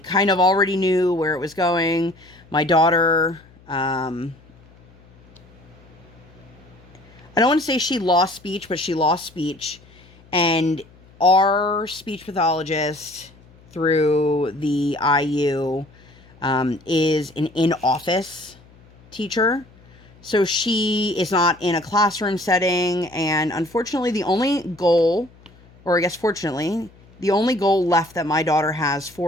of already knew where it was going. My daughter, I don't want to say she lost speech, but she lost speech. And our speech pathologist through the IU is an in-office teacher. So she is not in a classroom setting. And unfortunately, the only goal, or I guess fortunately, the only goal left that my daughter has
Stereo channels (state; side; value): noise; left; hum, 26 dB below the sound